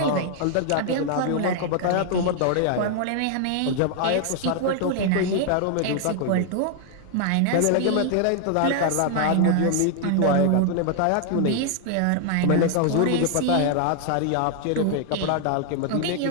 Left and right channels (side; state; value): both; different; correlation 0.00